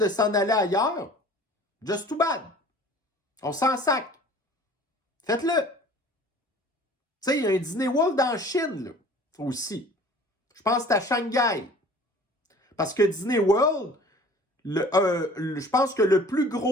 s'en aller ailleurs, just too bad. On s'en sac. Faites-le. Tu sais, il y a un Disney World en Chine, là, aussi. Je pense que c'est à Shanghai. Parce que Disney World, je pense que le plus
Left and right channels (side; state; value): both; normal; correlation 0.48